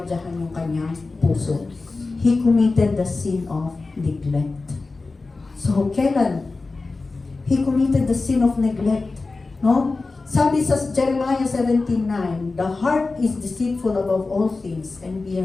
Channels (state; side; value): quieter; right; 3.7 dB